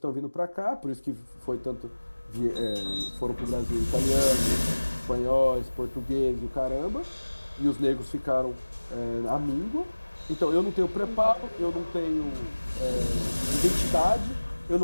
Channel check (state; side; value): inverted; both; correlation -1.00